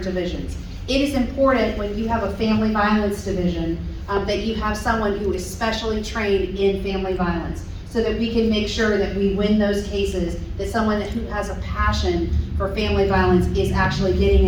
divisions. It is important when you have a family violence division that you have someone who is specially trained in family violence, so that we can make sure that we win those cases, that someone who has a passion for family violence is actually getting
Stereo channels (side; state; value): both; identical; correlation 1.00